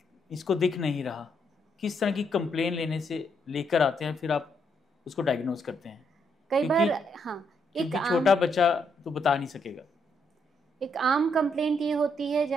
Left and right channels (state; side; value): normal; both; correlation 0.75